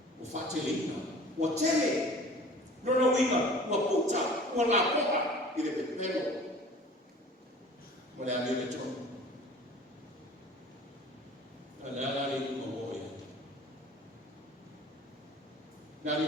Wafatele ina. Watele. Rona winga, ua puta, ua la poa, i le pepero. Ma le ame le tonu. A le ala le kuma moe. Nari,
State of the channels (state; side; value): normal; both; correlation 0.45